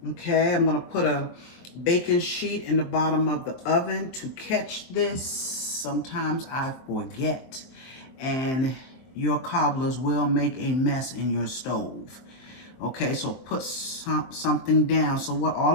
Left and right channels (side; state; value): right; late; 23 ms